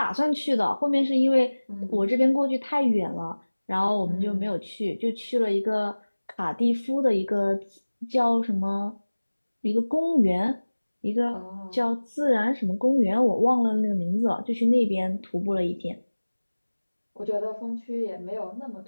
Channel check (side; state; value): both; inverted; correlation -1.00